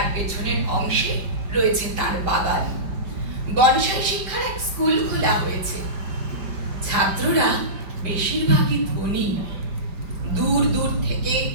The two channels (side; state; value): left; late; 5.2 ms